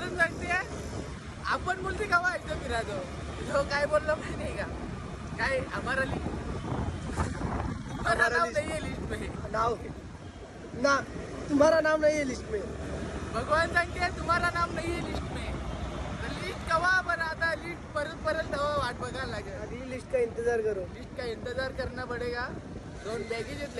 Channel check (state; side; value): identical; both; correlation 1.00